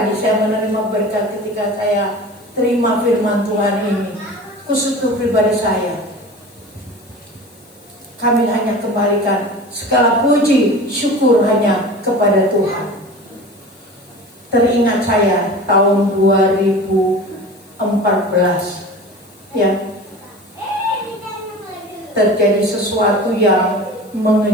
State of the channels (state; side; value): noise; left; hiss, 29 dB below the sound